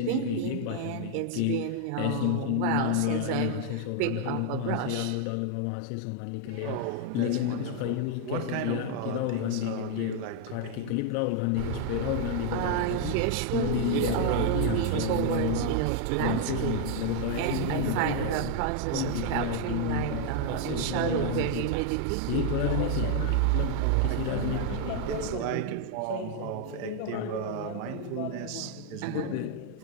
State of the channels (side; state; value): both; different; correlation 0.00